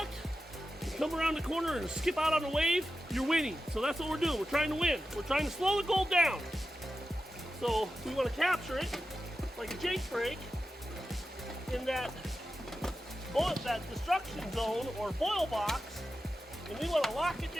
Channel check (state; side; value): normal; both; correlation 0.91